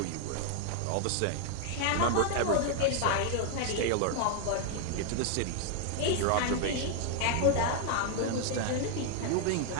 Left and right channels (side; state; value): both; different; correlation 0.00